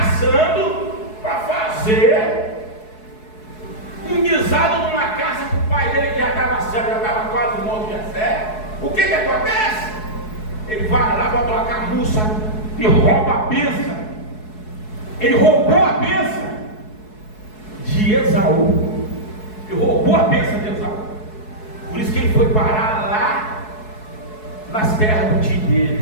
para fazer um guisado numa casa para o pai dele, que já estava cego, já estava quase morto de fé. O que acontece? Ele vai lá, bota uma camuça e rouba a bênção. Ele roubou a bênção de Esaú. Ele roubou a bênção de Esaú. Por isso que ele foi parar lá nas terras do tio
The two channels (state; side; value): late; right; 4.7 ms